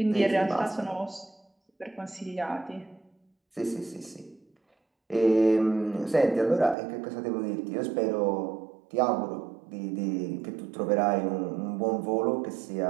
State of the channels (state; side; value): drops out; left; at 6.8 s